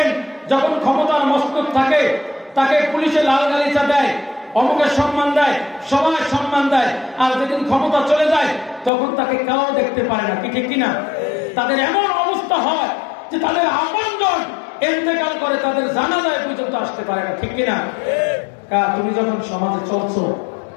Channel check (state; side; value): drops out; right; at 8.9 s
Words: যখন ক্ষমতার মস্তক থাকে তাকে পুলিশে লাল গালিচা দেয়, অমুকের সম্মান দেয়, সবাই সম্মান দেয়, আর যেদিন ক্ষমতা চলে যায় তখন তাকে কেউ দেখতে পারে না, কি ঠিক কিনা? তাদের এমন অবস্থা হয় যে তাদের আপনজন ইন্তেকাল করে, তাদের জানাজায় পর্যন্ত আসতে পারে না, ঠিক কিনা? তুমি যখন সমাজে চলছো